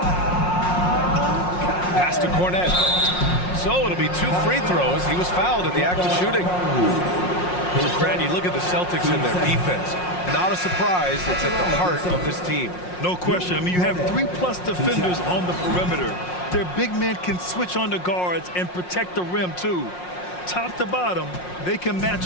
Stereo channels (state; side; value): late; right; 5.6 ms